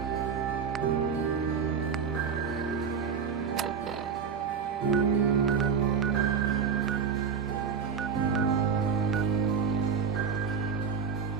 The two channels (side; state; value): left; quieter; 6.4 dB